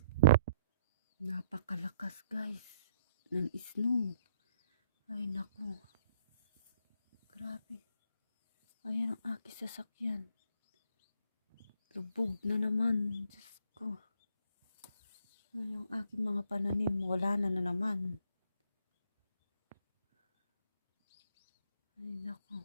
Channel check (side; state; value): both; inverted; correlation -0.67